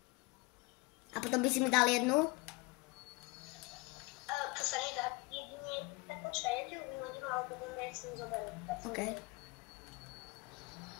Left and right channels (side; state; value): right; quieter; 24.0 dB